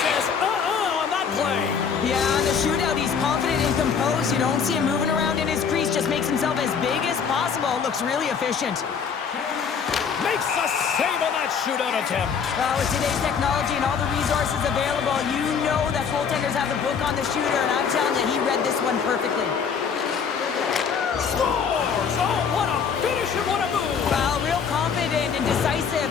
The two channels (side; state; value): right; quieter; 6.5 dB